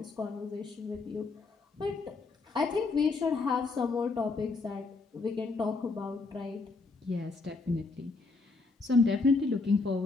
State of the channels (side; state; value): right; quieter; 3.9 dB